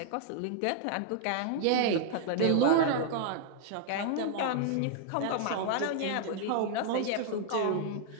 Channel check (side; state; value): both; different; correlation 0.00